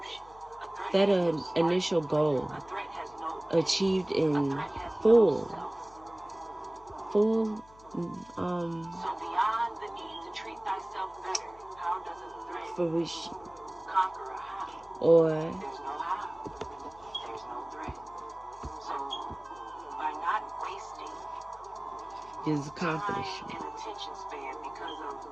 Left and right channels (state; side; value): noise; left; hum, 24 dB below the sound